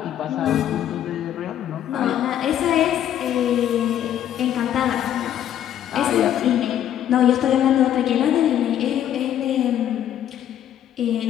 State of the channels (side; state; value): right; quieter; 10.8 dB